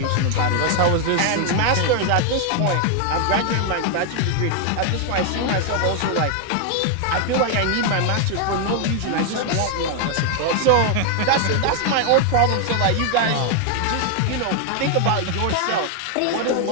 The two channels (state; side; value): different; both; correlation 0.00